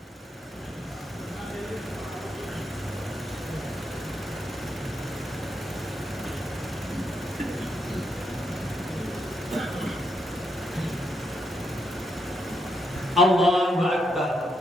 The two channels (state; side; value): normal; both; correlation 0.80